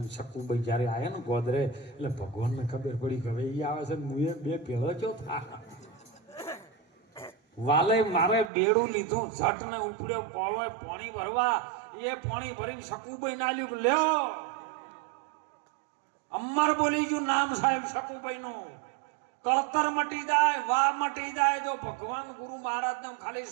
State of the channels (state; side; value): drops out; left; at 8.5 s